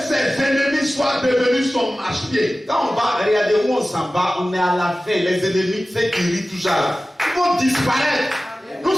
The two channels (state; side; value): normal; both; correlation 0.96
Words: ses ennemis soient devenus son marche-pied. Quand on va regarder où on s'en va, on est à la fin. Les ennemis, ceux qui rient toujours, ils vont disparaître. Nous